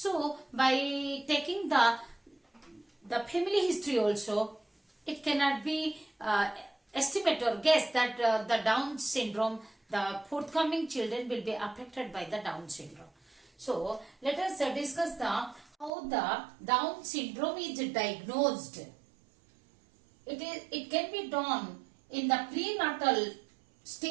by taking the family history also, it cannot be estimate or guess that the Down syndrome, the forthcoming children will be affected by the Down syndrome. So, let us discuss how the Down syndrome is diagnosed. It can be done in the prenatal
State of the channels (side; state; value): left; drops out; at 15.9 s